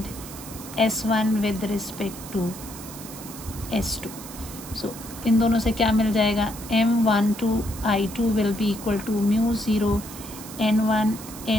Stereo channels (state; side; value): noise; right; hiss, 14 dB below the sound